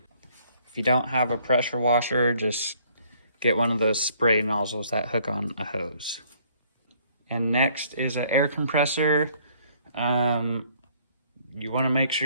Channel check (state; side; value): inverted; both; correlation -0.62